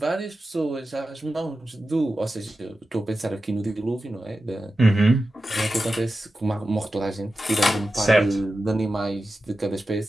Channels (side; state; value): both; normal; correlation 0.92